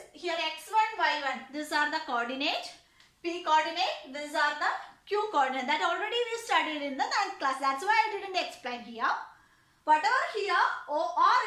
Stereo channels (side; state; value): both; identical; correlation 1.00